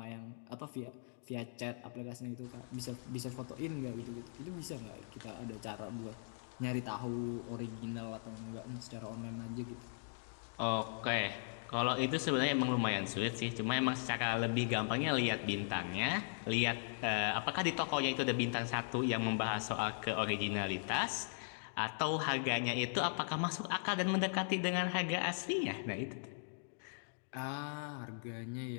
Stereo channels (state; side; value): silent; right; digital silence